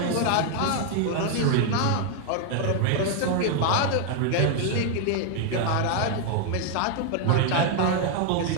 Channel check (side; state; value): both; different; correlation 0.00